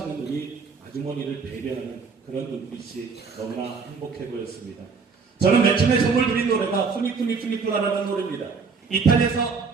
우리 아주머니를 배려하는 그런 눈빛이 너무나 행복해 보였습니다. 저는 맨 처음에 선물 드린 노래가 푸니푸니푸니푸라라는 노래입니다. 이탈리아에서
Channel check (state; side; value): quieter; left; 5.1 dB